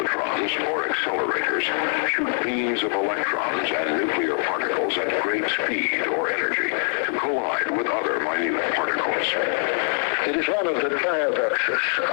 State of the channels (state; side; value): silent; right; digital silence